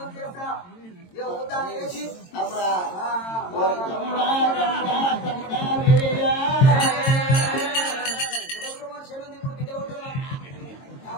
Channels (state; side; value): late; right; 22 ms